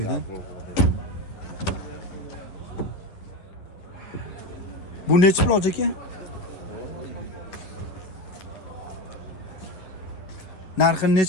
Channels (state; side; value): late; right; 10 ms